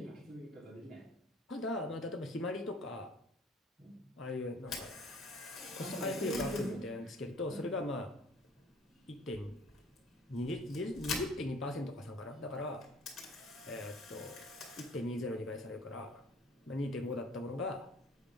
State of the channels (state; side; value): normal; both; correlation 0.52